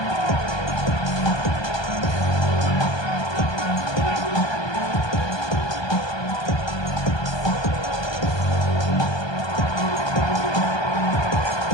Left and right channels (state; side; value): late; right; 1.2 ms